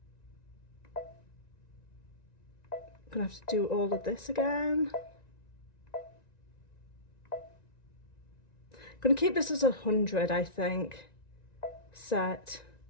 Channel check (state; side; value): late; right; 1.9 ms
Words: I'm gonna have to do all of this again. I'm gonna keep this as 100, I think. Set,